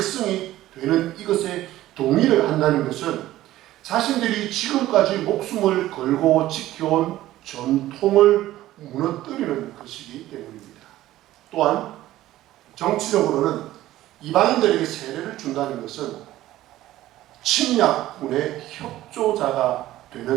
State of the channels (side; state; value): left; quieter; 14.9 dB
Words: 되는 이것에 동의를 한다는 것은 자신들이 지금까지 목숨을 걸고 지켜온 전통을 무너뜨리는 것이기 때문입니다. 또한 정치적으로는 이방인들에게 세례를 준다는 것은 침략군의 협조자가